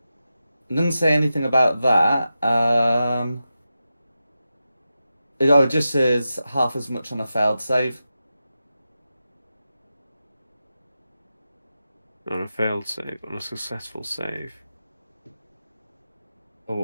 say anything about that. It just says half as much on a failed save. On a failed save, on a successful save.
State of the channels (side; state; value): both; inverted; correlation -0.91